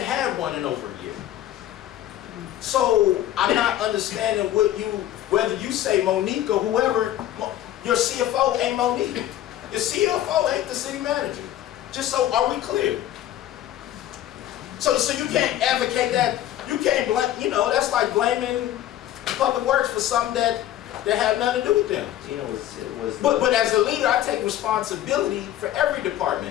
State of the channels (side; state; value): right; quieter; 12.8 dB